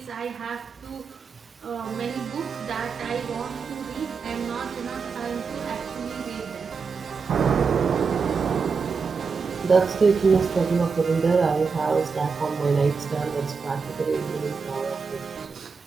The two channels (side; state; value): left; quieter; 5.2 dB